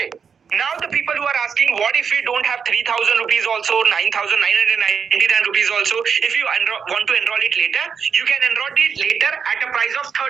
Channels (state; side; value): quieter; left; 6.5 dB